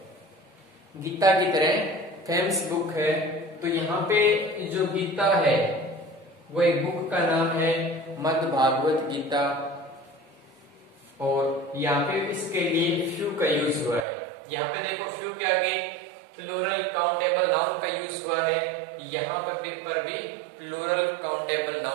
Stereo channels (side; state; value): left; drops out; at 14.1 s